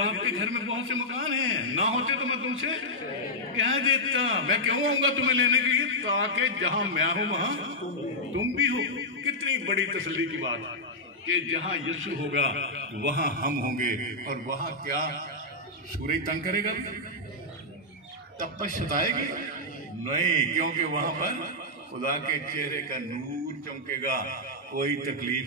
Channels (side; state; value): both; normal; correlation -0.06